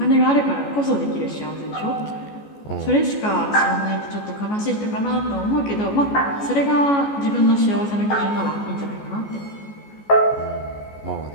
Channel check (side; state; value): right; late; 14 ms